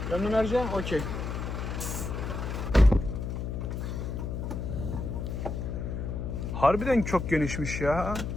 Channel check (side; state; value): left; noise; hum, 4 dB below the sound